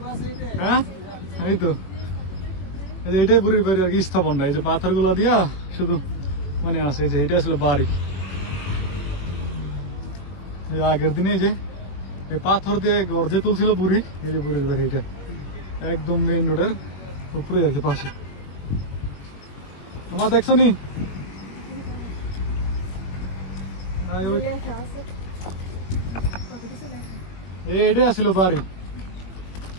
হ্যাঁ এই তো এটাই বুড়ির বাড়ি আর কি, স্থাপনটা এই যে পাথর গুলা দিয়া শুধু মনে আছে যে এটা আসলে বাড়ি। আগের দিনে যে এই পাথর দিয়ে গর্জে তুলছিল বুড়ি, এই যে বুড়ির বাড়ি এটা একদম মেইন রোডের উপরে আর কি পাশে। আমার দেখছো নি এটাই আসছিল বাড়ি।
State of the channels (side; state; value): right; late; 21 ms